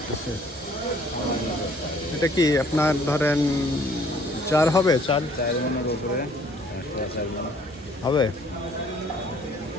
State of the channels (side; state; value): both; normal; correlation 0.59